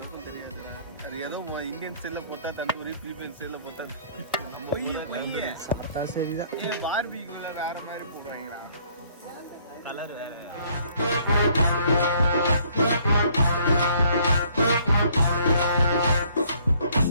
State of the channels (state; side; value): inverted; both; correlation -0.61